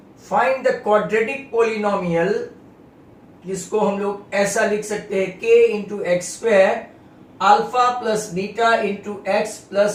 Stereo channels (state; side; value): identical; both; correlation 1.00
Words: Find the quadratic polynomial, जिसको हम लोग ऐसा लिख सकते हैं k into x square alpha plus beta into x